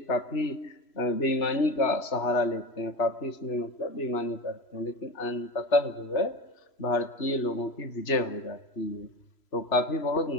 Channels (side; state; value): right; late; 3.0 ms